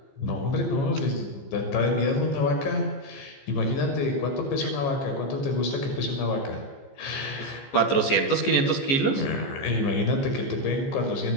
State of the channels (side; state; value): right; late; 15 ms